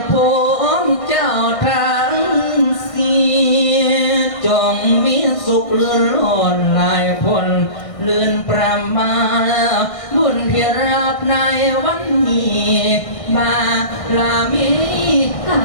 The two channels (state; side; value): late; right; 1.6 ms